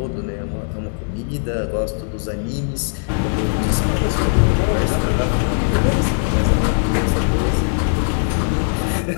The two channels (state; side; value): silent; right; digital silence